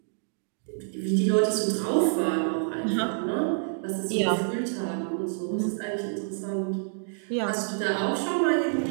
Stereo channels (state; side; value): silent; left; digital silence